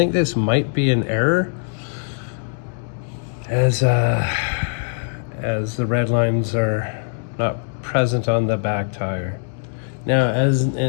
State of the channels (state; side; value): silent; right; 65 dB below the other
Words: this might be an error, as the red lines are not present on the back tire. Now, as